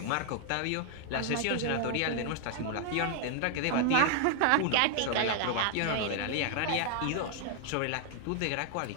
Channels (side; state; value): both; different; correlation 0.00